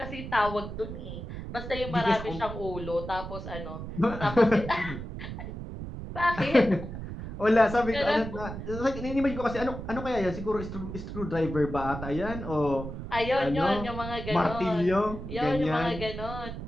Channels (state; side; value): noise; right; rumble, 8 dB below the sound